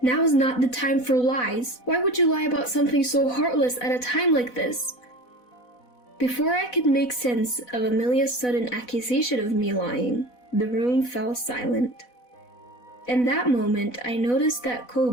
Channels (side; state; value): right; late; 4.1 ms